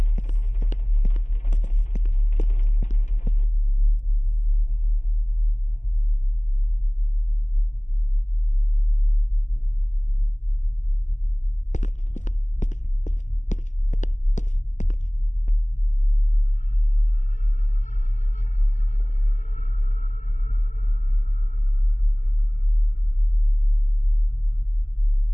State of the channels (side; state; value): right; late; 0.35 ms